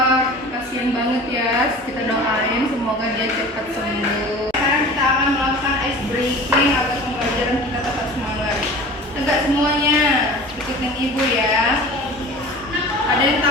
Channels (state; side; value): normal; both; correlation 0.39